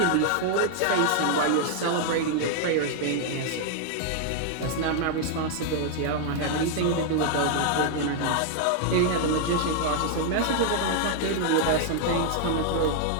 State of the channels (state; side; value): different; both; correlation 0.00